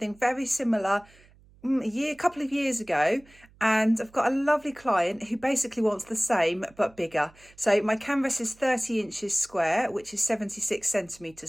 very similar a couple of years ago, and I've got a lovely client who basically wants the same but bigger. So my canvas is 30 inches square, which is 76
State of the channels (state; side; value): noise; right; hum, 28 dB below the sound